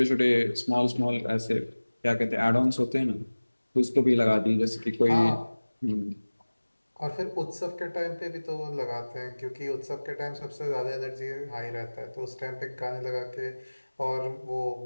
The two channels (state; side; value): inverted; both; correlation -1.00